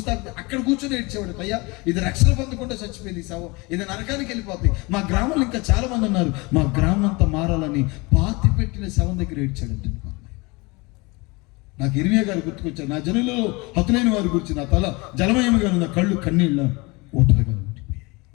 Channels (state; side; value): quieter; right; 25.9 dB